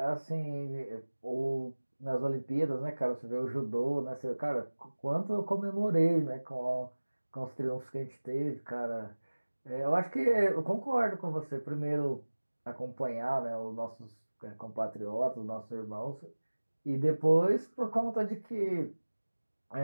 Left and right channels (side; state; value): both; inverted; correlation -1.00